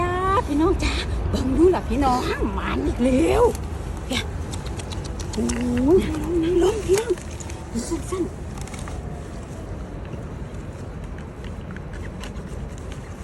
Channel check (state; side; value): identical; both; correlation 1.00